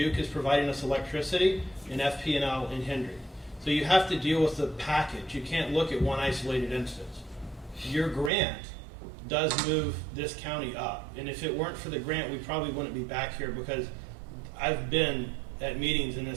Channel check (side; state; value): left; drops out; at 8.3 s